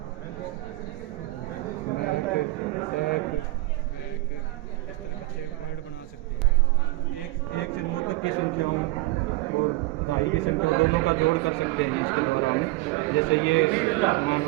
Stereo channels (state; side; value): quieter; left; 20.6 dB